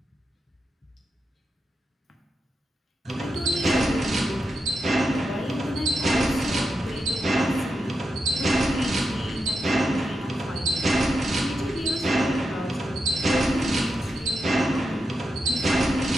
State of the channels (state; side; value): normal; both; correlation 0.87